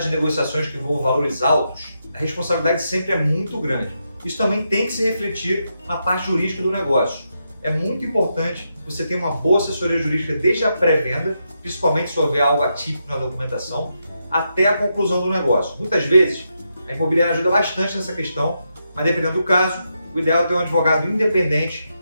negociações que envolvam valores altos, a responsabilidade sempre é muito grande. Isso também tem que se refletir na parte jurídica do negócio. É muito importante você ter uma boa assessoria jurídica desde a pré-venda, principalmente se houver algo atípico na documentação, até a conclusão do negócio. Muitas vezes, a imobiliária ajuda bastante nessa questão, mas dependendo do caso, o ideal é ter um advogado independente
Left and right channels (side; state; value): both; inverted; correlation -0.83